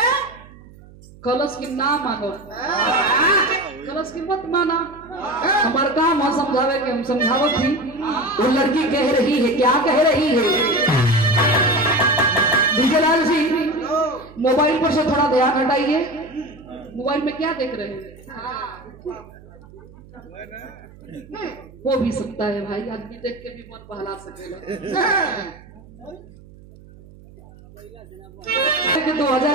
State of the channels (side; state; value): right; noise; hum, 22 dB below the sound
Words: कलश की ना मानो, कलश की मत माना। हमारा काम है समझावे के, हम समझावत थी। वो लड़की कह रही है, क्या कह रही है? विजयलाल जी मोबाइल पर से थोड़ा ध्यान हटाइए। मोबाइल में क्या देख रहे हैं? वो भी सकता है भाई, आदमी देख के भी मन बहला सकेगा।